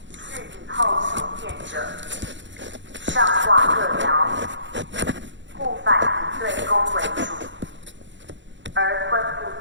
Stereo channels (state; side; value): late; left; 0.54 ms